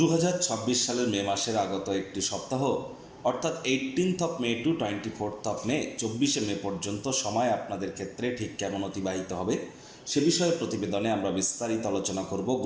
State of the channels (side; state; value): both; identical; correlation 1.00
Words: সালের মে মাসের আগত একটি সপ্তাহ অর্থাৎ 18 মে টু 24 মে 24 মে পর্যন্ত সময় আপনাদের ক্ষেত্রে ঠিক কেমন অতিবাহিত হবে সে বিষয়ে প্রতিবেদনে আমরা বিস্তারিত আলোচনা করব।